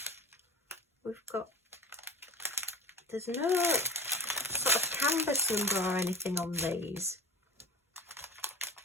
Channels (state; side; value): normal; both; correlation 0.34